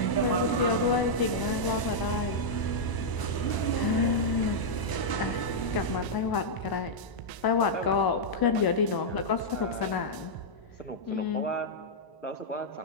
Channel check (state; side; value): late; right; 1.0 ms